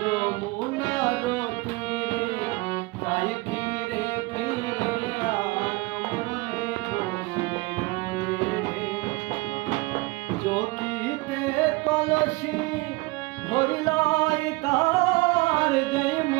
যমুনার তীরে তাই ফিরে ফিরে আনমনে বসে চকিতে কলসি ভরিলাই তার যে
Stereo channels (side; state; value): left; quieter; 23.3 dB